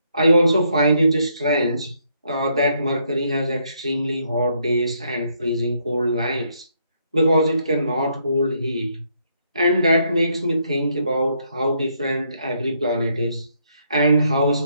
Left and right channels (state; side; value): inverted; both; correlation -0.73